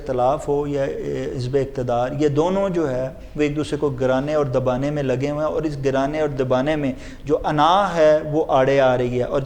ہو یا حزب اقتدار، یہ دونوں جو ہے وہ ایک دوسرے کو گرانے اور دبانے میں لگے ہوئے ہیں، اور اس گرانے اور دبانے میں جو انا ہے وہ آڑے آ رہی ہے، اور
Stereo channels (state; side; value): identical; both; correlation 1.00